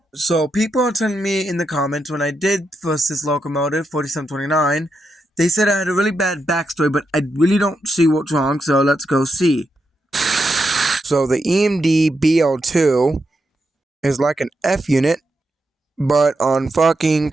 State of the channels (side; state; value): both; normal; correlation 0.84